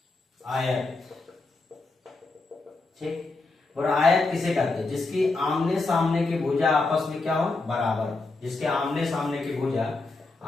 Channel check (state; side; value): quieter; right; 3.5 dB